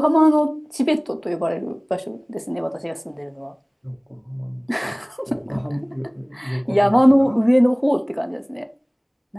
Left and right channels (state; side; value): identical; both; correlation 1.00